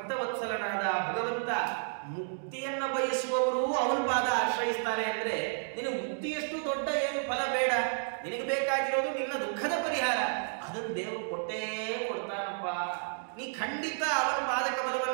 ಭಗವಂತ ಮುಕ್ತಿಯನ್ನ ಬಯಸುವವರು ಅವನ ಪಾದ ಆಶ್ರಯಿಸ್ತಾರೆ. ಅಂದ್ರೆ ನಿನಗೆ ಮುಕ್ತಿಯಷ್ಟು ದೊಡ್ಡ ಏನು ಫಲ ಬೇಡ, ನಿನಗೆ ಬೇಕಾಗಿರೋದು ನಿನ್ನ ದುಃಖದ ಪರಿಹಾರ. ಅದನ್ನು ದೇವರು ಕೊಟ್ಟೇ ಕೊಡ್ತಾನಪ್ಪ. ನೀ ಖಂಡಿತ ಅವನ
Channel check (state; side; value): silent; left; digital silence